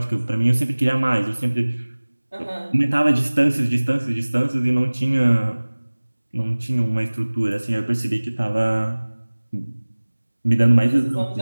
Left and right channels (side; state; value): both; inverted; correlation -1.00